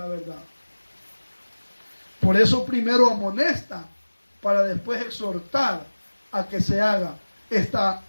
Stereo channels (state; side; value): inverted; both; correlation -1.00